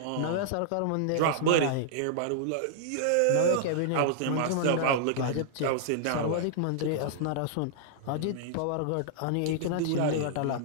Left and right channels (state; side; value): different; both; correlation -0.01